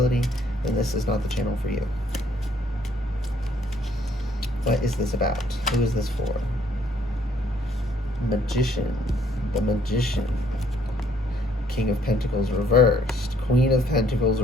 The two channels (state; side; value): normal; both; correlation 0.64